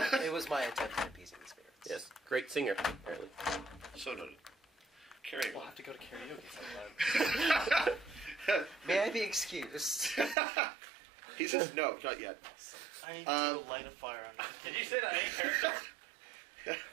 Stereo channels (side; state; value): left; drops out; at 10.4 s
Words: It was my attempt at appeasing the spirits. Yes. Great singer, apparently. So noted. Carry on. We'll have to go to karaoke sometime. May I be excused? He says no, not yet. I need to go light a fire under this. Did you say that in character?